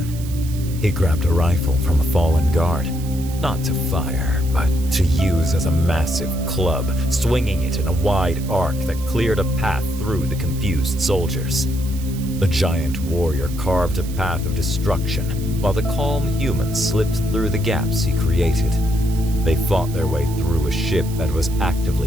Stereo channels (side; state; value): right; noise; hiss, 16 dB below the sound